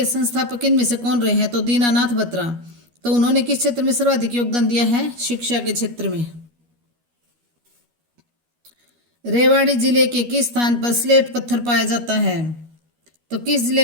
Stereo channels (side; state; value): left; late; 12 ms